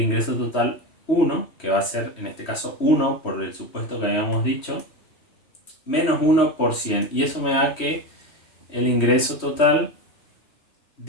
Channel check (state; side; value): late; right; 3.1 ms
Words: ingreso total 1, que va a ser en este caso 1 por el supuesto que habíamos dicho, menos 1 por 100. Y eso me da que el ingreso total